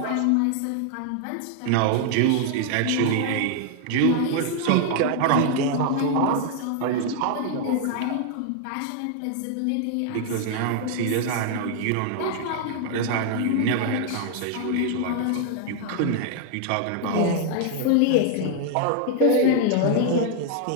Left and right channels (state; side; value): different; both; correlation 0.00